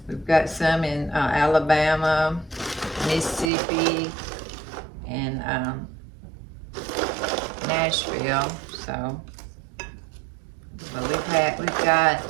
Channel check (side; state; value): left; drops out; at 3.5 s